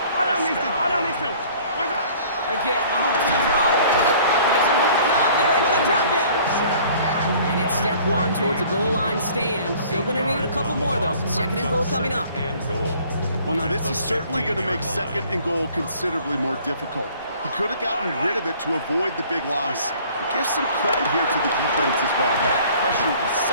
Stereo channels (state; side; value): inverted; both; correlation -0.53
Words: Again, Mahomes to throw. Pocket isn't holding up. They're able to drop it. And it's step 1 towards a goal line stand. Still going to need a couple more, though. Second and goal coming up. And goal. Well, now this is certainly going to make second and goal considerably more difficult. He could have gotten rid of it to avoid the big loss. But give some credit here to the defense as well. That pressure was